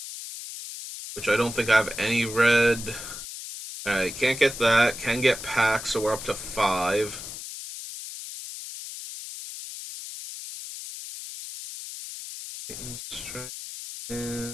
Which I don't think I have any red. Alright, can't get that. Can get packs, so we're up to 5.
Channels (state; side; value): noise; left; hiss, 10 dB below the sound